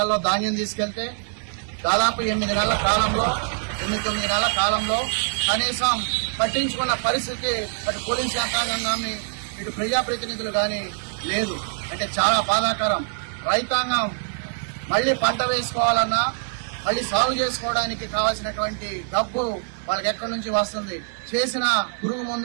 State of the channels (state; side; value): silent; left; digital silence